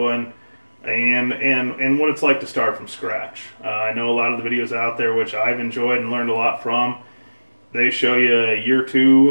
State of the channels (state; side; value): inverted; both; correlation -1.00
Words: and what it's like to start from scratch. I know a lot of the videos out there which I've enjoyed and learned a lot from, they show you year